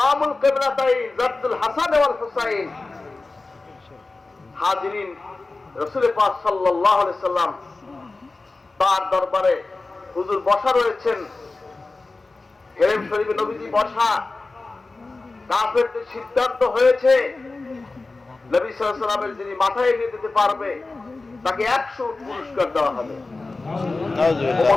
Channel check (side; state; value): right; quieter; 3.5 dB